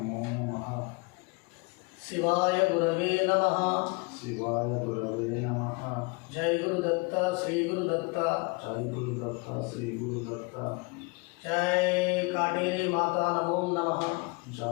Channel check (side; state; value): right; quieter; 29.3 dB